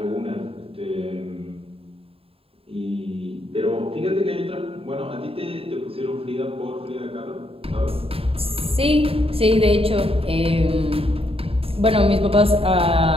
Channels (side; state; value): left; late; 0.27 ms